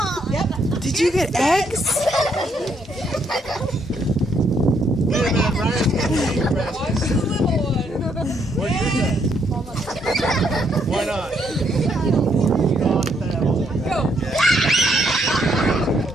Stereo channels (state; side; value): normal; both; correlation 0.73